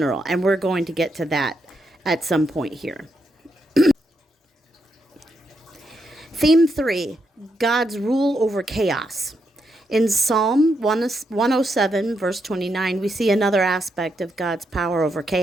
and we're going to get to that at some point here. Theme 3, God's rule over chaos. In Psalm 107, verse 29, we see another aspect of God's power over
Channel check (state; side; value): normal; both; correlation 0.81